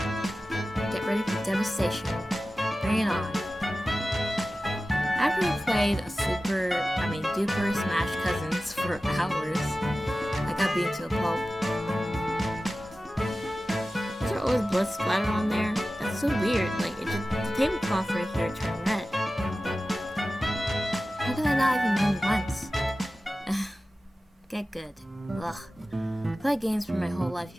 Get ready for devastation. Bring it on. After we played duper Smash Cousins for hours, I got beaten to a pulp. Is there always blood splatter on there? That's so weird. The tablecloth right here turned red. How did I not even win once? Get good. Ugh. I played games for my whole life,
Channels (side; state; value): both; normal; correlation 0.95